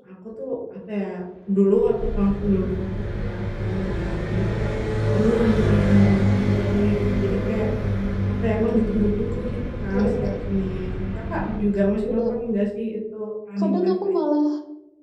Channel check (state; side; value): identical; both; correlation 1.00